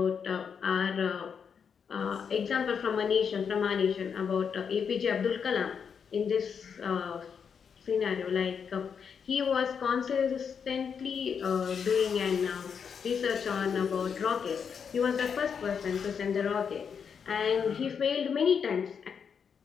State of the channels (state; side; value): quieter; right; 6.8 dB